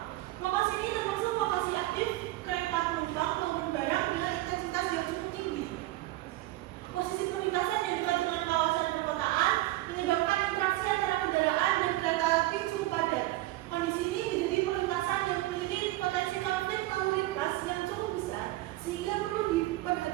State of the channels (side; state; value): left; quieter; 17.5 dB